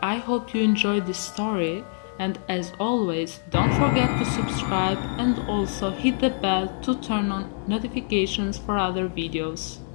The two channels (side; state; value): right; silent; digital silence